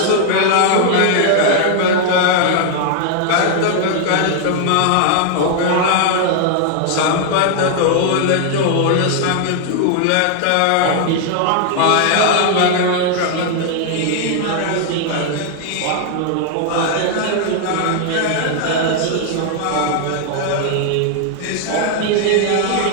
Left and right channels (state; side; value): different; both; correlation 0.00